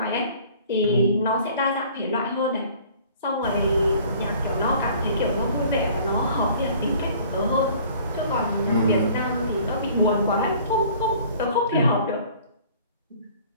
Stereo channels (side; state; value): both; inverted; correlation -0.52